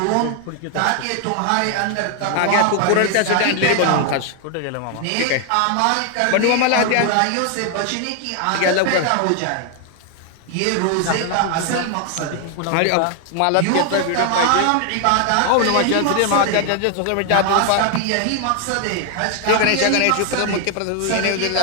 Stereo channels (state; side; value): different; both; correlation 0.00